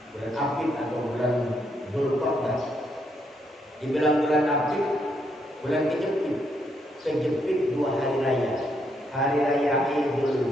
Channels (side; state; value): both; normal; correlation 0.76